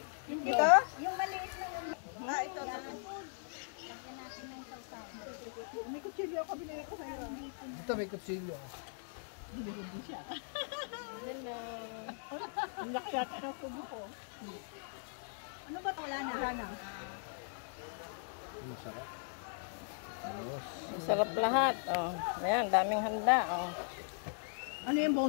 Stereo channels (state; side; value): silent; right; digital silence